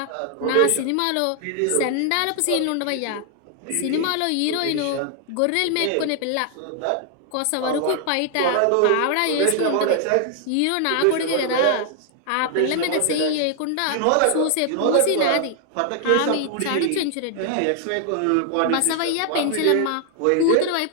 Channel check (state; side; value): different; both; correlation 0.00